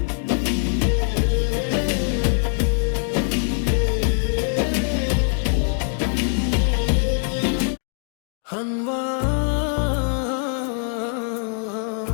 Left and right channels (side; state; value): right; silent; digital silence